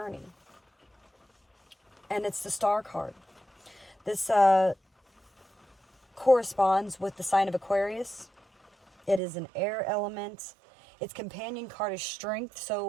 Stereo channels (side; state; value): left; drops out; at 9.2 s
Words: And it's the Star card. This corresponds with the sign of Aquarius. It is an air element. Its companion card is strength.